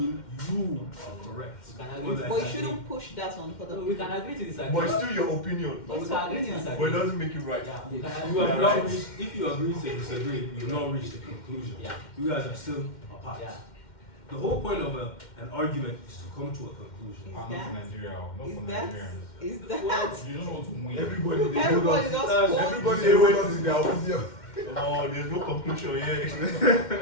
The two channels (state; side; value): late; right; 2.1 ms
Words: you are correct. Or that- But you shouldn't push that on other We people. can agree to disagree. But it's still your opinion. But we can agree to But it disagree. doesn't make you right. Yeah, we can You have agree. not reached, if you agree to disagree, you've not reached a conclusion. Yeah. You guys are still apart. Yeah. The whole point of an argument is to come to a conclusion. Not for Nigeria, not Is for that Nigerians. is that You don't want to win. Everybody they hold everybody on. just That's- hold- Everybody they hold on to their opinion. Oh, there's no conclusion yet.